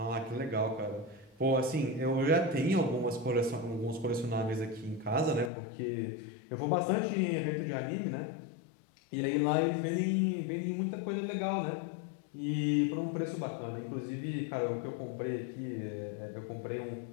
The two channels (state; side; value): drops out; right; at 5.5 s